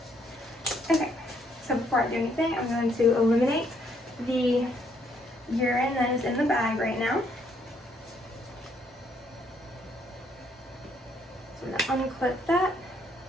Okay, so before I do anything, I'm going to eliminate the urine that is in the bag right now. So I'm going to unclip that,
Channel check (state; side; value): normal; both; correlation 0.70